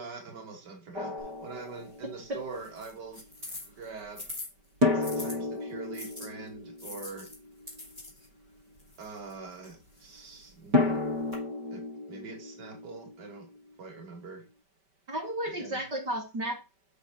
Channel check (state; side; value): late; left; 5.2 ms